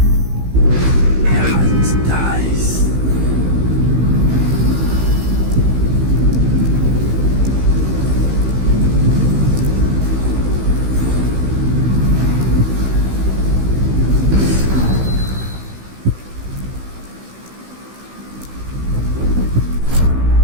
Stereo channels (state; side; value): late; left; 16 ms